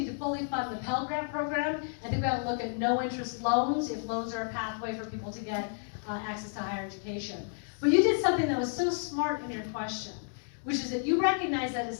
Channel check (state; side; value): silent; right; 57 dB below the other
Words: to fully fund the Pell Grant program. I think we ought to look at no interest loans if loans are a pathway for people to get access to higher education. But you did something that was so smart in your question, which is that you recognize that